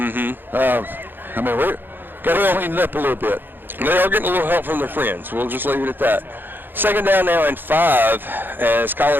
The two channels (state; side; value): late; left; 0.095 ms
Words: got to clean it up a little bit. They are getting a little help from their friends. We'll just leave it at that. 2nd down now and 5 as